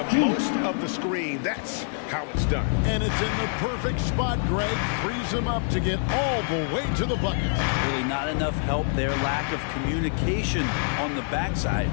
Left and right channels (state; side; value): silent; right; 61 dB below the other